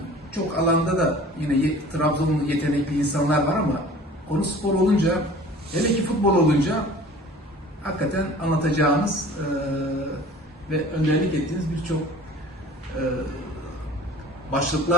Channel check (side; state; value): both; normal; correlation 0.45